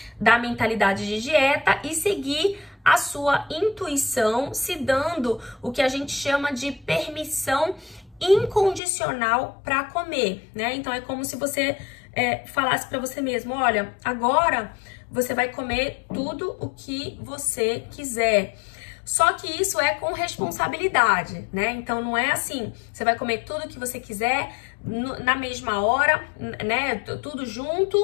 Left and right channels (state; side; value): drops out; right; at 8.8 s